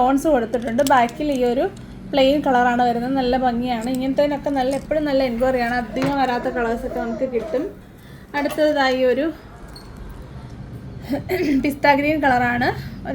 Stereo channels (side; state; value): both; identical; correlation 1.00